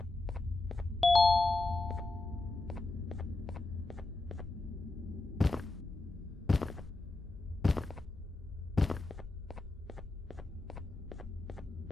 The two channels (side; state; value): right; quieter; 3.0 dB